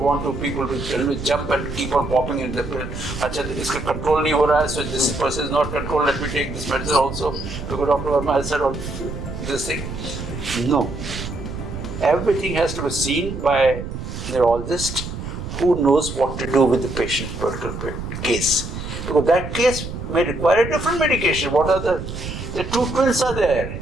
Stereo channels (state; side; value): noise; right; rumble, 8 dB below the sound